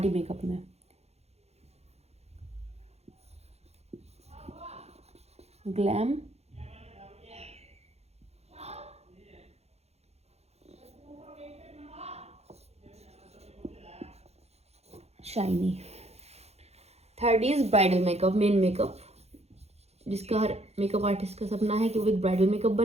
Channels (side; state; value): left; late; 0.31 ms